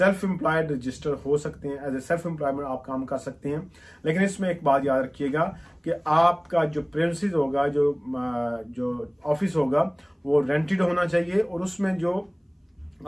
एम्प्लॉयड रजिस्टर हो सकते हैं, एज ए सेल्फ एम्प्लॉयमेंट आप काम कर सकते हैं। लेकिन इसमें एक बात याद रखिएगा कि आपका जो प्रेमिसेस होगा, जो ऑफिस होगा, वो रेंटेड होना चाहिए, और उसमें जो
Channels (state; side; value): identical; both; correlation 1.00